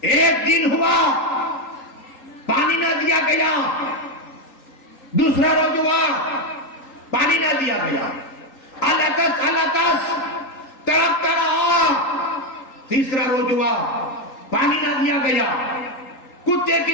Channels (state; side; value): late; right; 3.8 ms